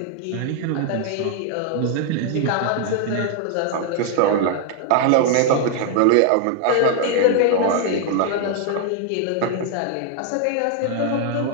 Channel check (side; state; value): both; different; correlation 0.00